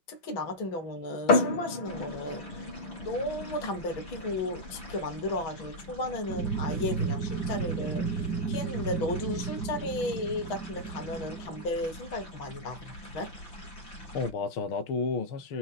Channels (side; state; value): right; late; 6.2 ms